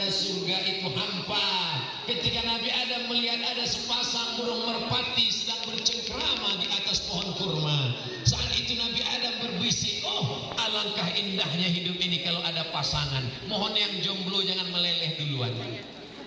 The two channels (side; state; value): both; identical; correlation 1.00